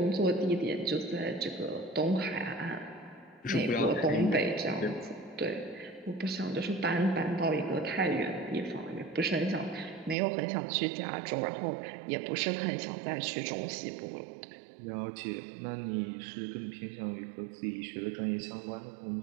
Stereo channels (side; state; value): left; drops out; at 10.2 s